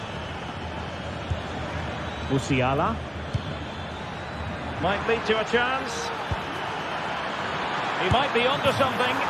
Musiala. Might lead to a chance. He might be onto something.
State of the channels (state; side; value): identical; both; correlation 1.00